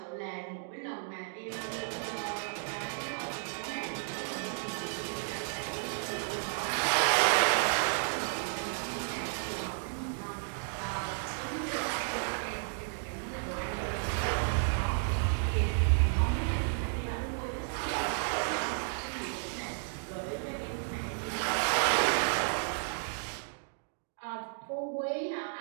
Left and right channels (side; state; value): left; silent; digital silence